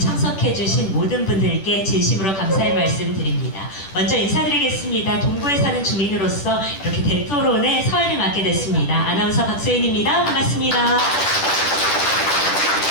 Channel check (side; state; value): right; late; 10 ms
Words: 모든 분들께 진심으로 감사의 말씀 드립니다. 먼저 인사드리겠습니다. 동구에 사는 주민으로서 이렇게 대토론의 서열을 맡게 됐습니다. 아나운서 박소연입니다. 반갑습니다.